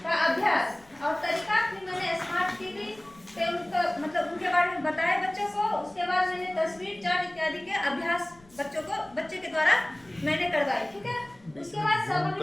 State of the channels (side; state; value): left; noise; rumble, 27 dB below the sound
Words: का अभ्यास और तरीका। फिर मैंने स्मार्ट टीवी पे उनका मतलब उनके बारे में बताया बच्चों को। उसके बाद मैंने तस्वीर, चार्ट इत्यादि के अभ्यास बच्चे के द्वारा मैंने करवाई। ठीक है, उसके बाद